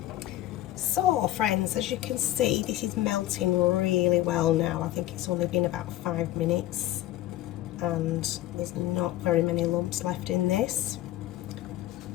So friends, as you can see, this is melting really well now. I think it's only been about 5 minutes and there's not very many lumps left in this.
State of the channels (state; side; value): quieter; right; 14.7 dB